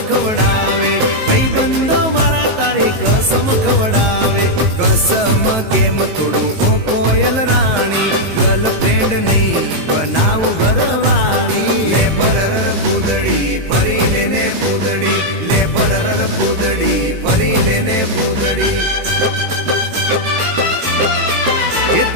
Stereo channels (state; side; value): late; left; 19 ms